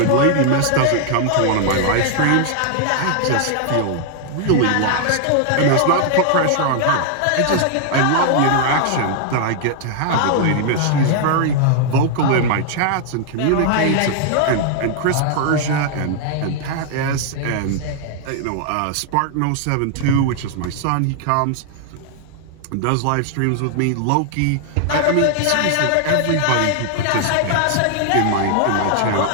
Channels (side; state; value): both; different; correlation 0.00